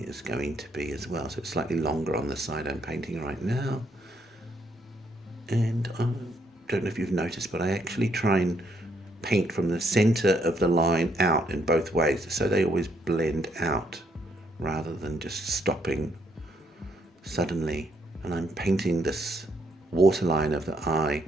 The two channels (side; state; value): both; normal; correlation 0.72